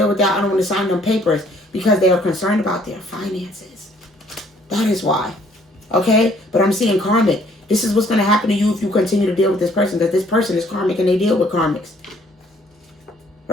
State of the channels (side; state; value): both; normal; correlation 0.62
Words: with that. I don't want to sign them papers because they are concerned about their finances. That is why. Okay? But I'm seeing karmic. This is what's going to happen to you if you continue to deal with this person. That this person is karmic and they deal with karmics.